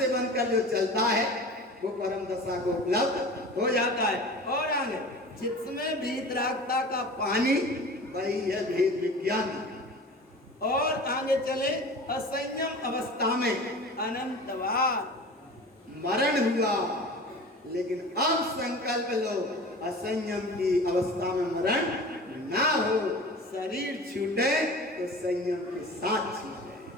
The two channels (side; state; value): both; normal; correlation 0.37